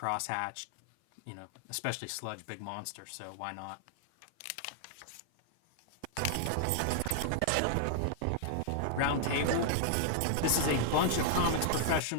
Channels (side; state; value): both; different; correlation -0.01